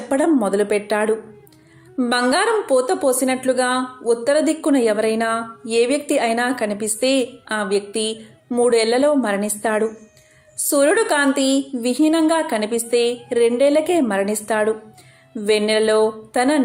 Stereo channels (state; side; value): identical; both; correlation 1.00